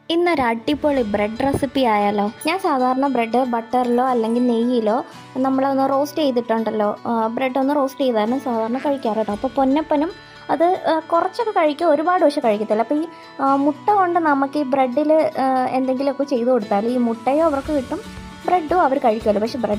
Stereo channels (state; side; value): identical; both; correlation 1.00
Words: ഇന്നൊരു അടിപൊളി bread recipe ആയാലോ. ഞാൻ സാധാരണ ബ്രെഡ് ബട്ടറിലോ അല്ലെങ്കിൽ നെയ്യിലോ നമ്മളൊന്ന് റോസ്റ്റ് ചെയ്തിട്ടുണ്ടല്ലോ, ബ്രെഡ് ഒന്ന് റോസ്റ്റ് ചെയ്താണ് സാധാരണ കഴിക്കാറ് കേട്ടോ. അപ്പോൾ പൊന്നപ്പനും അത് കുറച്ചൊക്കെ കഴിക്കും, ഒരുപാട് പക്ഷെ കഴിക്കത്തില്ല. അപ്പോൾ ഈ മുട്ട കൊണ്ട് നമുക്ക് ഈ ബ്രെഡിൽ എന്തെങ്കിലുമൊക്കെ ചെയ്ത് കൊടുത്താൽ ഈ മുട്ടയോ അവർക്ക് കിട്ടും, ബ്രെഡും അവർ കഴിക്കുമല്ലോ. പക്ഷേ